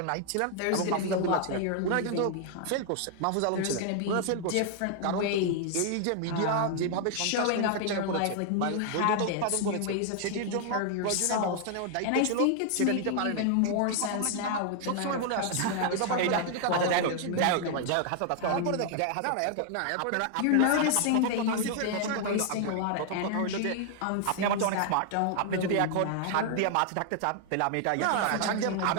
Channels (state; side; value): different; both; correlation 0.00